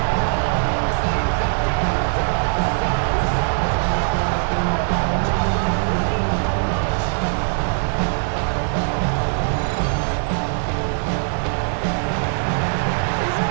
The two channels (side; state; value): left; silent; 60 dB below the other